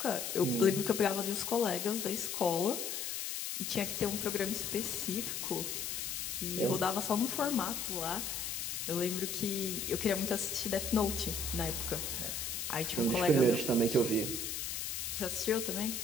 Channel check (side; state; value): left; noise; hiss, 3 dB below the sound